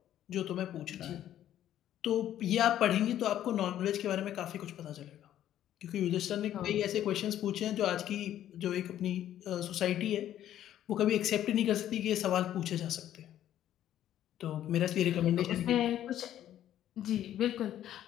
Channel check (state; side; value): quieter; right; 11.7 dB